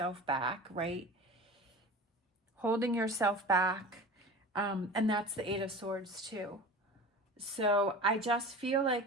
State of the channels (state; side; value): normal; both; correlation 0.35